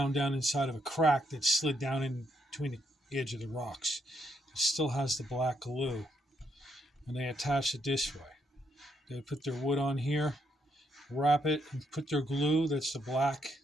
down inside of a crack that slid down in between the edge of the rocks. It still has the black glue. And they attached it this way. They would put their wood on here, wrap it, and put their glue, that's the black.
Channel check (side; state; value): both; normal; correlation 0.76